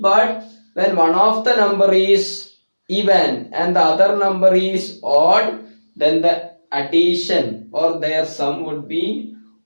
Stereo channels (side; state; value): both; inverted; correlation -1.00